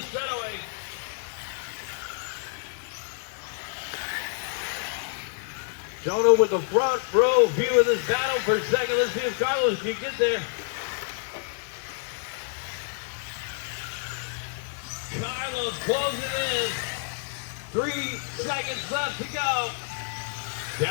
straightaway. Jonah with the front row view of this battle for a second. Let's see if Carlos can get there. Carlos closing in. 3 seconds left to go.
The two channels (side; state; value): right; silent; 59 dB below the other